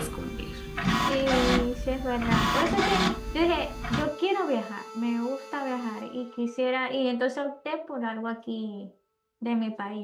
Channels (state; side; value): identical; both; correlation 1.00